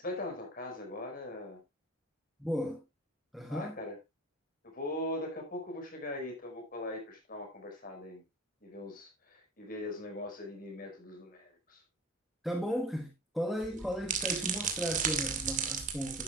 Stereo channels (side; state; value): both; normal; correlation 0.37